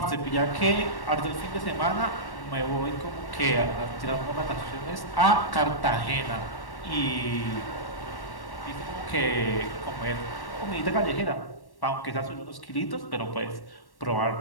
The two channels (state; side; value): late; right; 1.1 ms